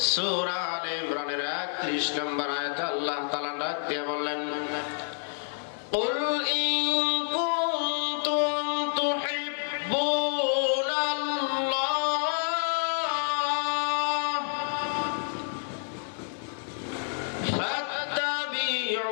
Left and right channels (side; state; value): right; silent; digital silence